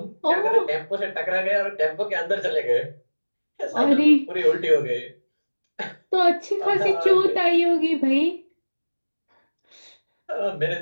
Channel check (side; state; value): both; inverted; correlation -1.00